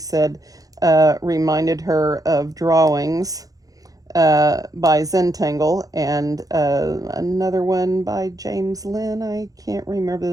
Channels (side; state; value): left; late; 0.17 ms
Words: reminded her of drawings by Zentangle, and another one by James Lynn. I can't remember